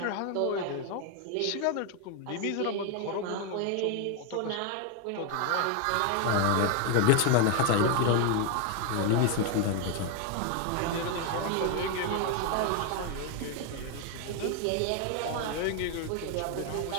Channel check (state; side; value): different; both; correlation 0.01